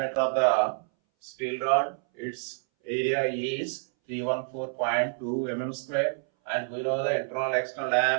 of the steel rod, its area is 314.2 mm square, and we know the internal external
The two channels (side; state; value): left; silent; 59 dB below the other